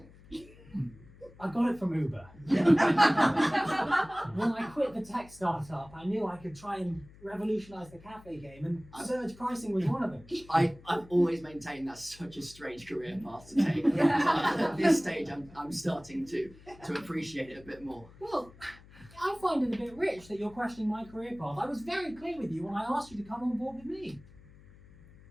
I got it from Uber. When I quit the a tech startup, I knew I could try and revolutionize the cafe game, and surge pricing was one of them. I've always maintained that's such a strange career path to take. But at this stage, I'm starting to appreciate it a bit more. Well, I find it a bit rich that you're questioning my career path. I was very clear with you when I asked you to come on board with me.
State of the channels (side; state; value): left; noise; hum, 22 dB below the sound